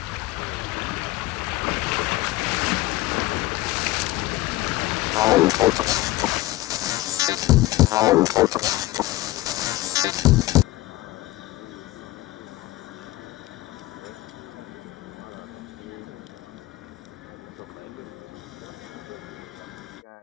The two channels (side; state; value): right; quieter; 18.1 dB